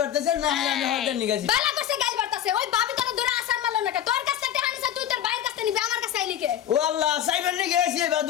বাড়তেছে না আমি হতে নিগেছি বালা করছে গাল বাড়তাছে ওই ভাবি তোর দূরে আসার মারলো না তোর কাছে টাকা নিছে তুই তোর ভাইয়ের কাছে নিবি আমার কাছে চাইলি কে ও আল্লাহ সাইবেন নি গেছি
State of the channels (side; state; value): right; quieter; 10.7 dB